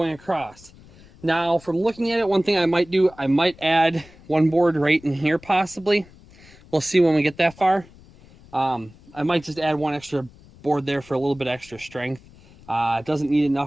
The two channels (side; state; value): left; noise; rumble, 24 dB below the sound